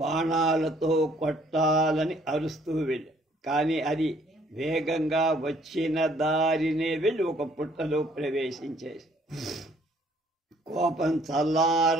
కొట్టాలని అరుస్తూ వెళ్ళి, కానీ అది వేగంగా వచ్చిన దారినే వెళ్ళి ఒక పుట్టలో ప్రవేశించేసి కోపం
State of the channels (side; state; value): both; normal; correlation 0.62